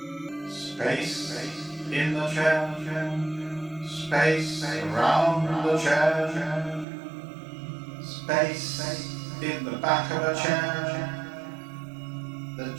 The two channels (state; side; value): drops out; left; at 6.9 s